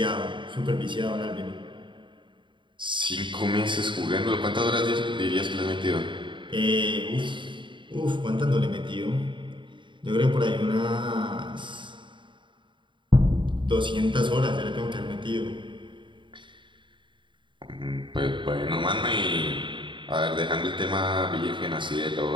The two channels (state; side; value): late; left; 0.23 ms